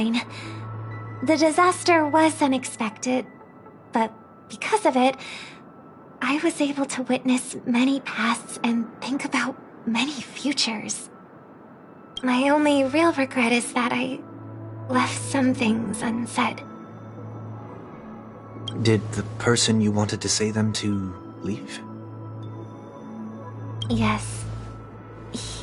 The disaster was unexpected, but because of it, I was able to witness many pasts and think about many futures. My only real regret is that I left some things unsaid. Did the person you wanted to say them to leave? Yes.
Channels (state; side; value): identical; both; correlation 1.00